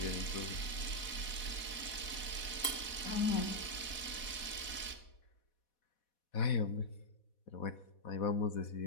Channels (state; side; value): late; right; 4.1 ms